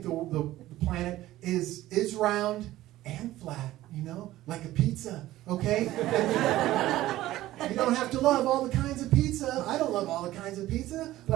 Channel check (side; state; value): left; quieter; 15.5 dB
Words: the planet is round and flat, you know, like a pizza, okay? You don't have to love all the kinds of pizza. I don't love all the kinds of pizza,